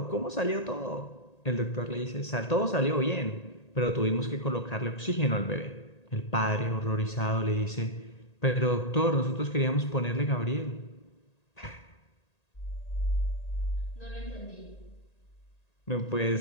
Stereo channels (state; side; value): late; right; 1.8 ms